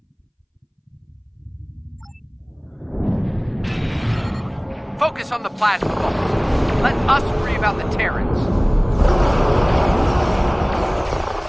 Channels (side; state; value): both; identical; correlation 1.00